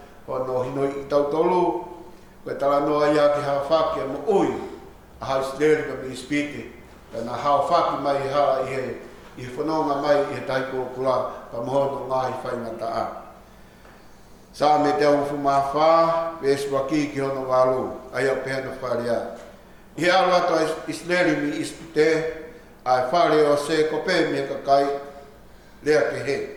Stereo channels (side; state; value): both; identical; correlation 1.00